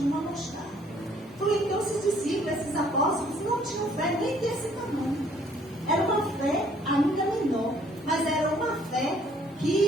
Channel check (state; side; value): normal; both; correlation 0.61